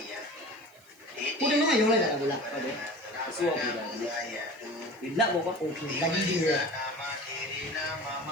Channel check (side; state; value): right; noise; hiss, 28 dB below the sound